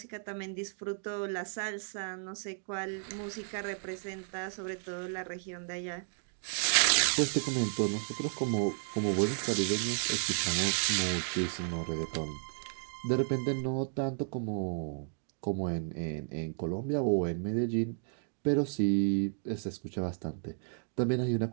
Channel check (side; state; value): left; silent; digital silence